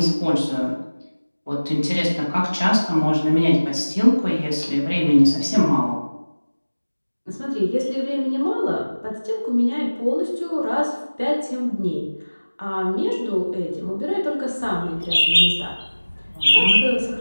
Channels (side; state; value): both; inverted; correlation -1.00